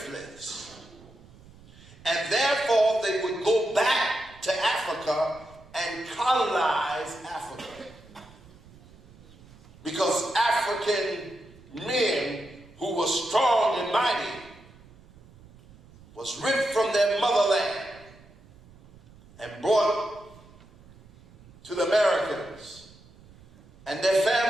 And therefore they would go back to Africa and colonize Africa. Because African men who were strong and mighty was ripped from their motherland and brought to the Americans, and their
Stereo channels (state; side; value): noise; right; rumble, 24 dB below the sound